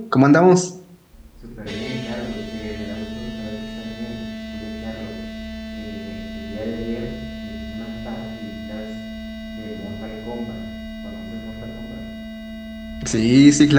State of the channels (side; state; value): both; identical; correlation 1.00